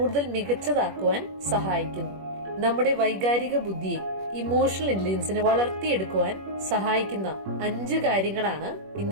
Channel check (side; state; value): left; late; 21 ms